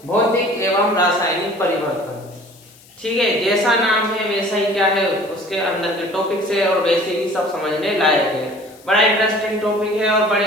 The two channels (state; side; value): noise; left; hiss, 26 dB below the sound